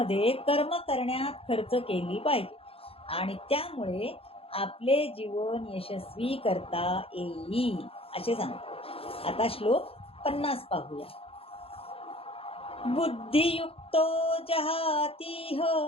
कर्म करण्यात खर्च केली पाहिजे आणि त्यामुळे आपले जीवन यशस्वी करता येईल, असे सांगतात. आता श्लोक 50 पाहूया. बुद्धियुक्तो जहातीह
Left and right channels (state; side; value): late; right; 0.27 ms